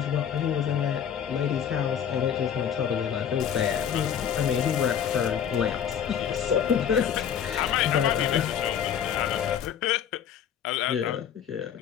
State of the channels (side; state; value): right; quieter; 8.6 dB